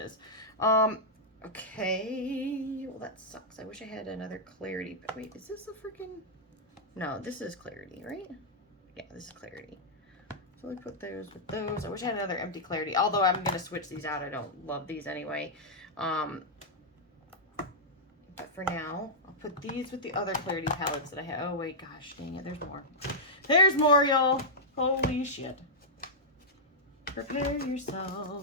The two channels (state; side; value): normal; both; correlation -0.09